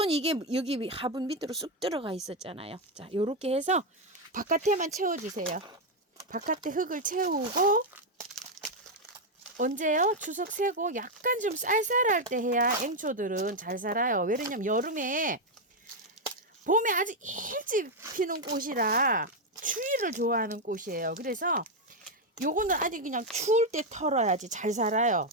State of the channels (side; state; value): both; normal; correlation 0.03